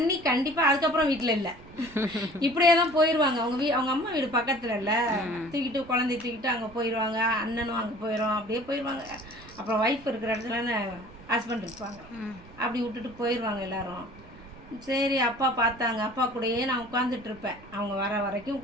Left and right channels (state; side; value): noise; right; rumble, 21 dB below the sound